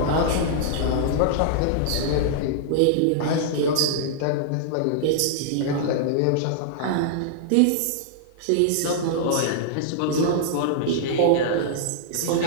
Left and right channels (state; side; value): different; both; correlation -0.01